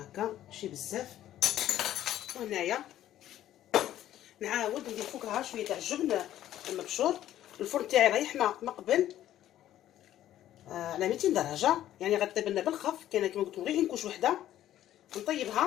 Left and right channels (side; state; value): right; quieter; 12.5 dB